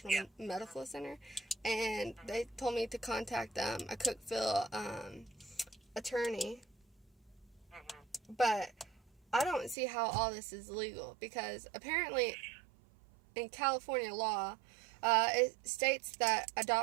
Yeah. Medical Center. And they told me to contact a Cookeville attorney. Mm-hmm. But I don't see how all this is legal, because apparently in California law, it states that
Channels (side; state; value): left; drops out; at 9.8 s